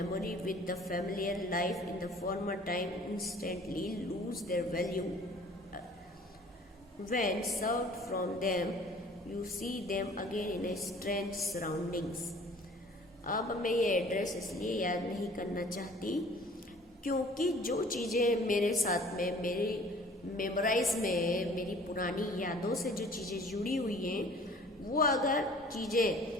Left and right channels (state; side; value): normal; both; correlation 0.51